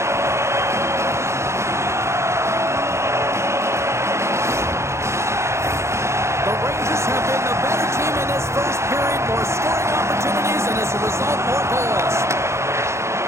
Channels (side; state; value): left; late; 0.13 ms